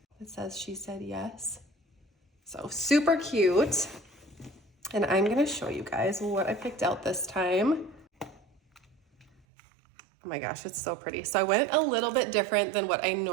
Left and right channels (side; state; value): left; drops out; at 9.4 s